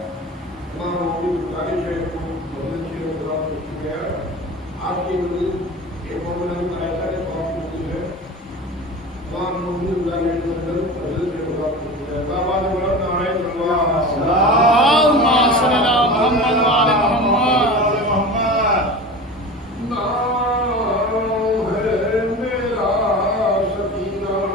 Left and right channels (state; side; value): normal; both; correlation 0.33